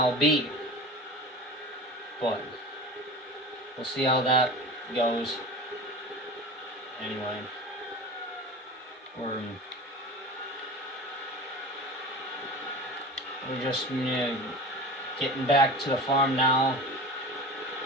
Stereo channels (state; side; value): normal; both; correlation 0.34